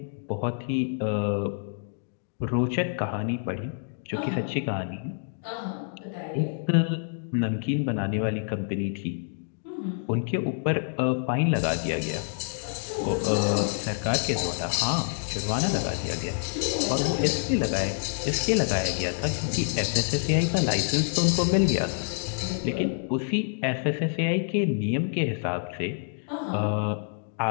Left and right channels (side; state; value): right; silent; digital silence